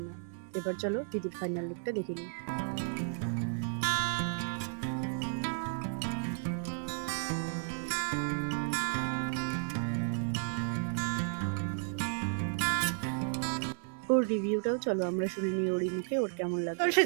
না। এবার চলো দিদির ফাইনাল লুকটা দেখে নিই। ওর রিভিউটাও চলো আমরা শুনে নিই ওরই মুখে, ওর কেমন লাগলো।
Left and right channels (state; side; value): silent; left; 55 dB below the other